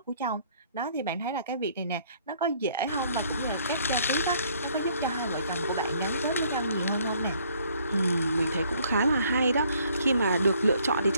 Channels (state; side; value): inverted; both; correlation -0.63